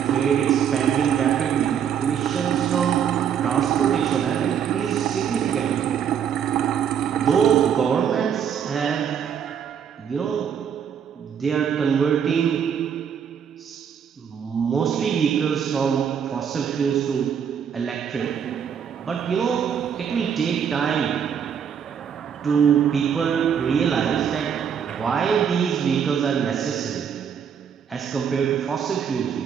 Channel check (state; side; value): quieter; left; 8.0 dB